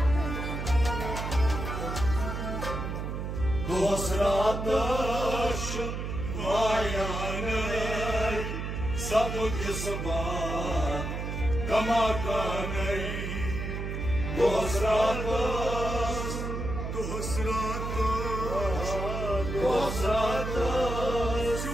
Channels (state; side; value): noise; right; hum, 4 dB below the sound